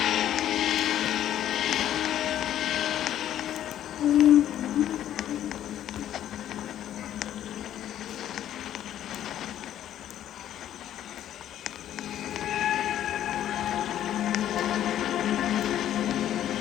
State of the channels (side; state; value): right; quieter; 11.4 dB